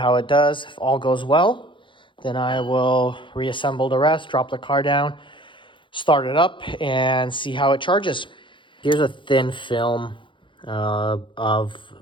it does. If all goes well, then I will reassemble the rest, drop the car down, start it up, and see how it charges. Here's a thin film of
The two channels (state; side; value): late; right; 0.24 ms